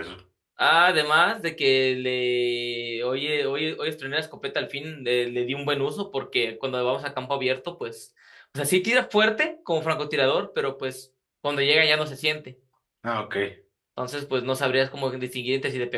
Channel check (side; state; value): both; identical; correlation 1.00